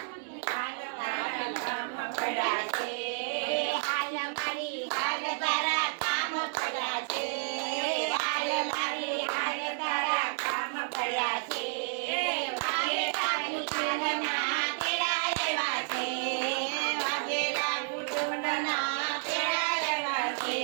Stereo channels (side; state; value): left; silent; 57 dB below the other